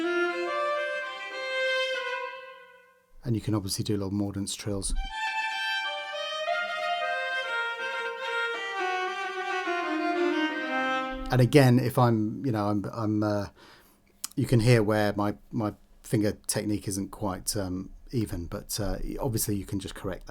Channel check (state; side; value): identical; both; correlation 1.00